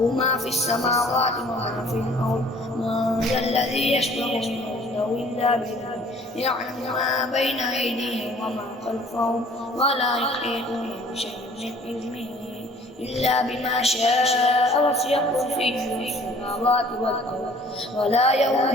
ما في السماوات وما في الأرض. من ذا الذي يشفع عنده إلا بإذنه يعلم ما بين أيديهم وما خلفهم ولا يحيطون بشيء من علمه إلا بما شاء وسع كرسيه السماوات والأرض ولا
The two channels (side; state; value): both; normal; correlation 0.53